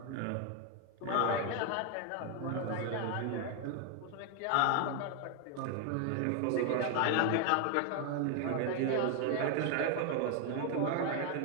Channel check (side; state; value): both; different; correlation 0.01